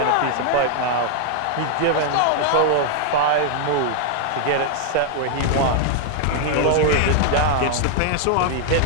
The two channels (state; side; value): different; both; correlation 0.00